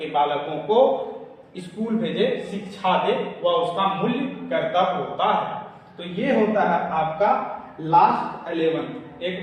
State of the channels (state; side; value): identical; both; correlation 1.00